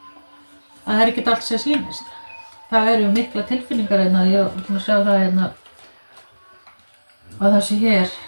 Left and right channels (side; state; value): both; inverted; correlation -1.00